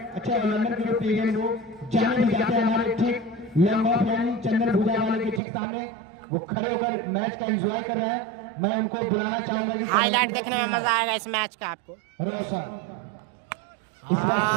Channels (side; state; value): left; drops out; at 5.4 s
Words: अच्छे ऑलराउंडर के रूप में वो जाने भी जाते हैं हमारे ठीक लंग ऑफ यानी चंदन भूजा वाले के ठीक सामने, वो खड़े होकर मैच का एंजॉय कर रहे हैं। मैं उनको बुलाना चाहूंगा, हाईलाइट देखने में मजा आएगा इस मैच का आपको।